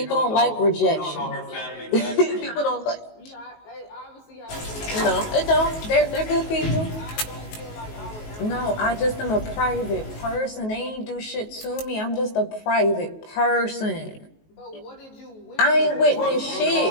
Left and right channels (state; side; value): late; right; 19 ms